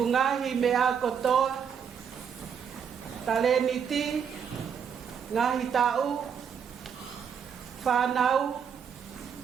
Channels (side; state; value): left; quieter; 7.4 dB